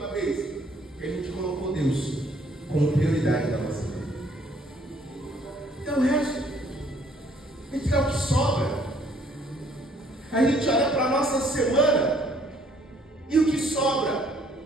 vez que a gente colocou Deus como prioridade da nossa vida? Então o resto, a gente quer o que sobra. A gente olha para a nossa semana e o que sobra,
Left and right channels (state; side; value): normal; both; correlation 0.63